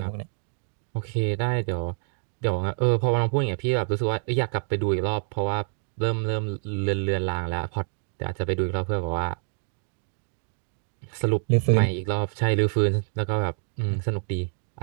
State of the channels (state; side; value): silent; left; digital silence